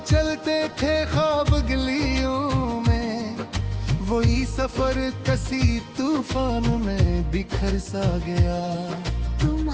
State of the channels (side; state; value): both; identical; correlation 1.00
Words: चलते थे ख्वाब गलियों में, वही सफर कसी तूफान में बिखर सा गया।